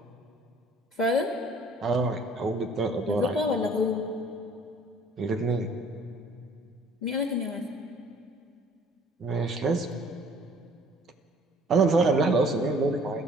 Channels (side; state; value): both; normal; correlation 0.55